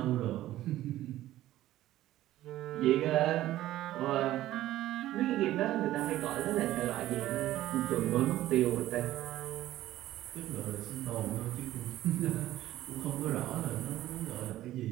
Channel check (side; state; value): left; quieter; 14.5 dB